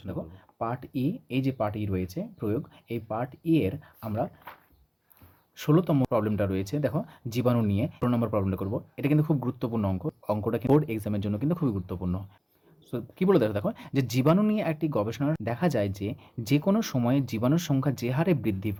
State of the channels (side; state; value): both; identical; correlation 1.00